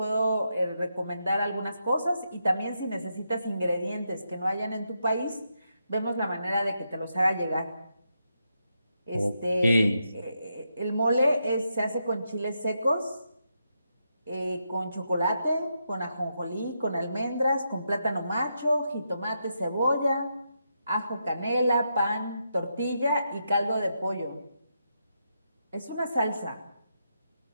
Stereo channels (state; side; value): inverted; both; correlation -0.83